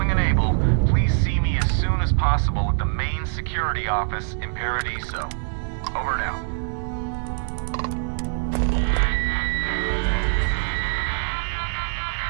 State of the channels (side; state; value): left; silent; digital silence